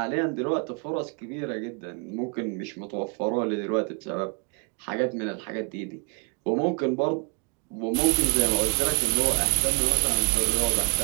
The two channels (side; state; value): left; quieter; 37.2 dB